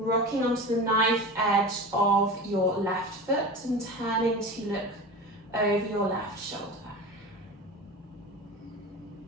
onto the knife edge of your left foot and turning to look over your left shoulder.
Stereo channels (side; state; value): both; normal; correlation 0.31